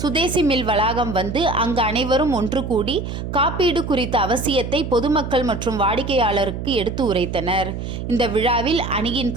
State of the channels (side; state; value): right; noise; hum, 6 dB below the sound